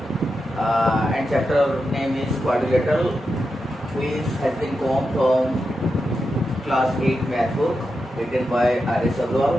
and chapter name is quadrilateral, which has been come from class 8 math book written by R.S.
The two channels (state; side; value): normal; both; correlation 0.88